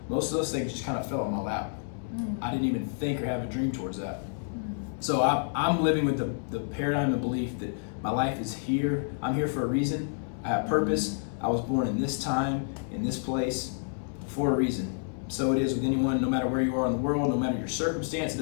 Most of those things just kind of fell in my lap. I didn't even think or have a dream towards that. So I'm living with the paradigm of belief that my life is here. I'm here for a reason. I have purpose. I was born in this time, in this place, for a reason. So it is with anyone, no matter where you are in the world, no matter your circumstance. It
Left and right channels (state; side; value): silent; right; digital silence